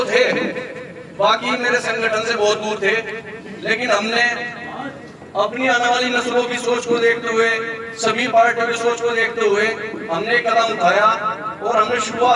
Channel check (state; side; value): identical; both; correlation 1.00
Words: थे, बाकी मेरे संगठन से बहुत दूर थे, लेकिन हमने अपनी आने वाली नस्लों की सोच को देखते हुए, सभी पार्टियों की सोच को देखते हुए हमने कदम उठाया और हमने